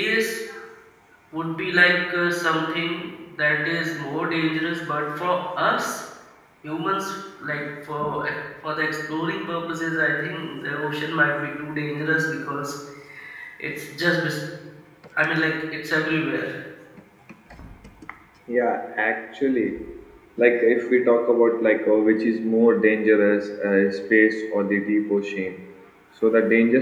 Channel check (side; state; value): both; identical; correlation 1.00